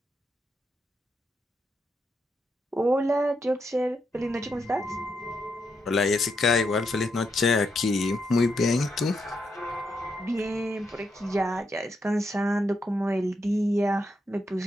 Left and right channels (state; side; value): normal; both; correlation 0.81